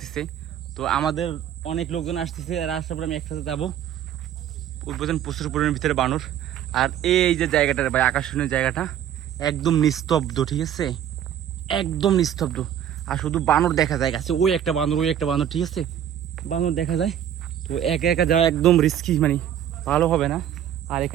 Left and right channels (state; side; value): quieter; left; 10.2 dB